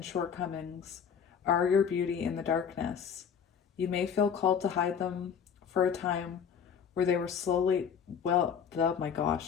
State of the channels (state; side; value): quieter; right; 7.3 dB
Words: shortcomings are your beauty in the darkness. You may feel called to hide them for a time where they were slowly, where